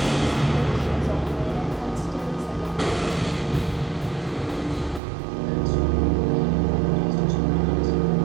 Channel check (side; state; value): left; drops out; at 5.0 s